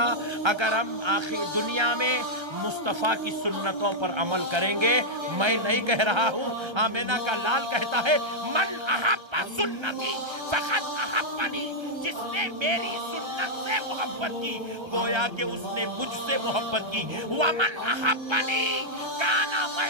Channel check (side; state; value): left; late; 1.3 ms